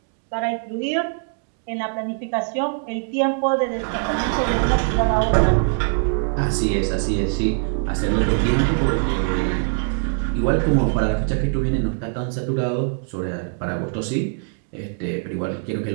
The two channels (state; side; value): silent; left; 57 dB below the other